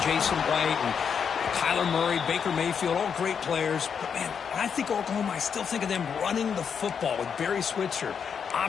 Jason White and Kyler Murray, Baker Mayfield, all great players. But, man, when I think Oklahoma, I still think of them running the football with Barry Switzer,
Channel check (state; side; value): quieter; right; 6.9 dB